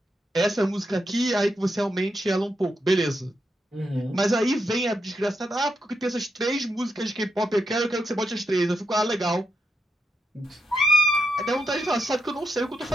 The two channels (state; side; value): normal; both; correlation 0.84